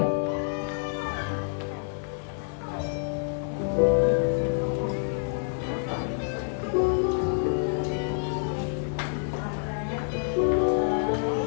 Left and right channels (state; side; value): silent; right; digital silence